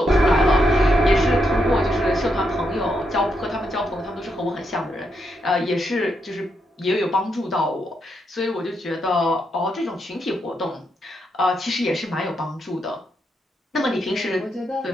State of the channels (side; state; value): both; normal; correlation 0.81